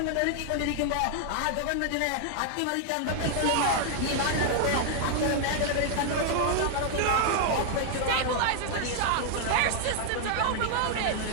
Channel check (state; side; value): different; both; correlation 0.00